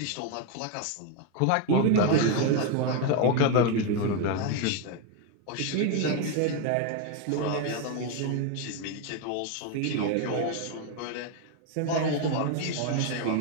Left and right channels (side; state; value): both; different; correlation 0.01